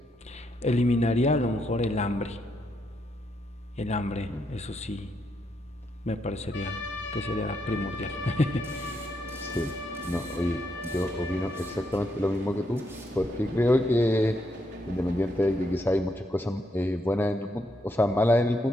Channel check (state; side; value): normal; both; correlation 0.78